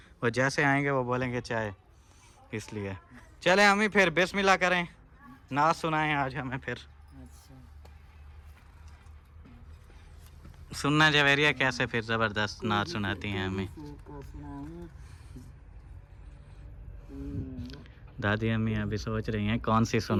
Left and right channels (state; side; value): identical; both; correlation 1.00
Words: वो जैसे आएंगे वो बोलेंगे चाय, इसलिए चले हमें फिर बिस्मिल्लाह करें, नात सुनाएं आज हमें फिर। अच्छा सुनना जवेरिया कैसे फिर ज़बरदस्त नात सुनाती हैं हमें दादी अम्मी। अभी सोच रही हैं कौन सी